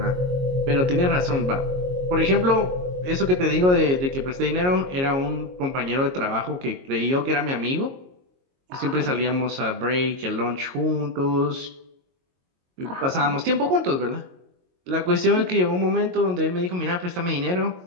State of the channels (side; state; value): left; late; 22 ms